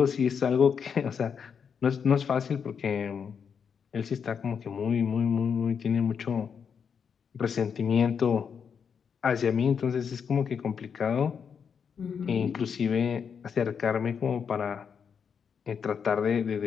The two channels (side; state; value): right; quieter; 6.8 dB